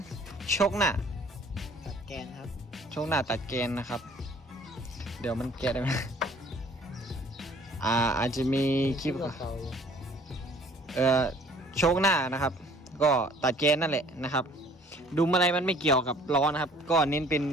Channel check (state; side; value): normal; both; correlation 0.54